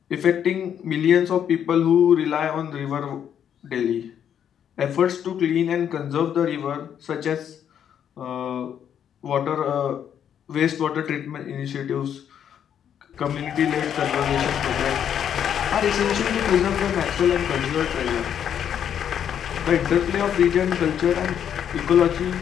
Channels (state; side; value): quieter; right; 9.0 dB